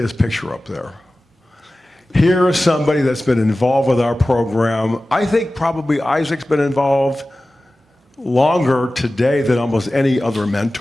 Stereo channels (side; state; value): both; normal; correlation 0.96